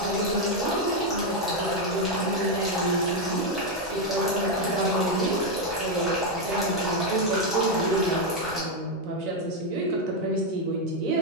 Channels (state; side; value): normal; both; correlation 0.03